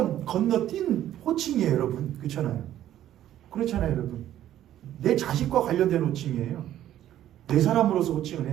건너뛴 호칭이에요, 여러분. 그렇잖아요. 그렇잖아요, 여러분. 내 자식과 관련된 호칭이에요. 내 사람으로서 호칭을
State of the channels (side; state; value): left; quieter; 12.2 dB